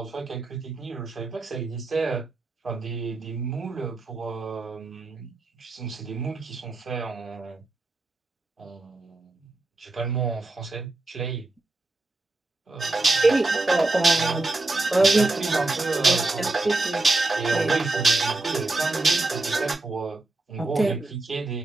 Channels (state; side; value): quieter; left; 3.0 dB